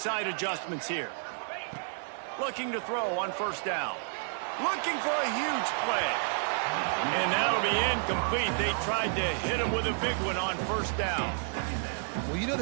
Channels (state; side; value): silent; left; 57 dB below the other